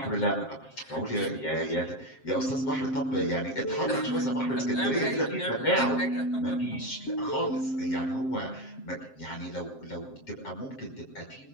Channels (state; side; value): late; right; 7.6 ms